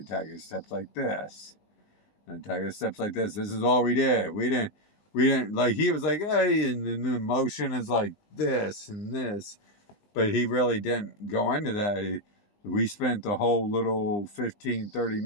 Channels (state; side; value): late; right; 19 ms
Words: tiger steps like this, and tiger steps like this. This is all we did. We didn't like. He was like, hey, and the motion is like this and this, but he really didn't go into that. We spent the whole little 15-30